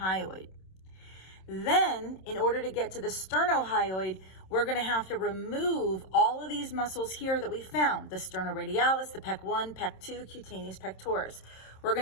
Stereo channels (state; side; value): late; right; 27 ms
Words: Then, in order to get to the sternohyoid, we're gonna have to remove all of these muscles here that we found, the sternoradialis, the pec 1, pec 2, cutaneous pectoris. We're